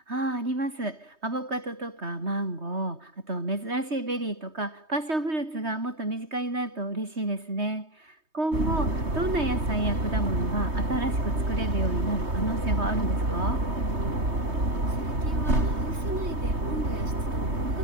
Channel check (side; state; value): left; late; 3.2 ms